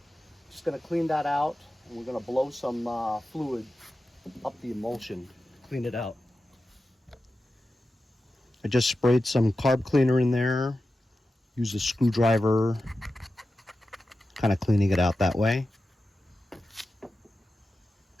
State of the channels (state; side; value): normal; both; correlation 0.92